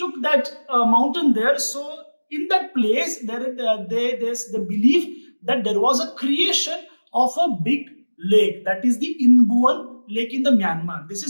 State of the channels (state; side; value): inverted; both; correlation -1.00